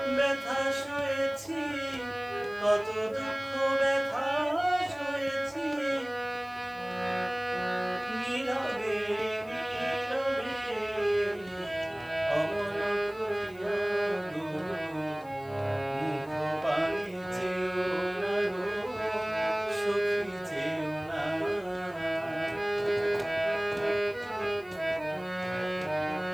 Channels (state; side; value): noise; left; hiss, 27 dB below the sound